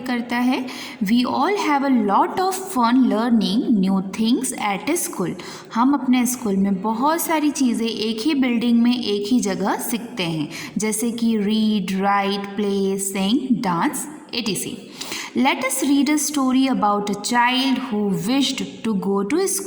करता है। We all have a lot of fun learning new things at school. हम अपने स्कूल में बहुत सारी चीज़ें एक ही बिल्डिंग में एक ही जगह सीखते हैं, जैसे कि read, right, play, Singh, dance etc. Let us read a story about a child who wished to go to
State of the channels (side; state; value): both; identical; correlation 1.00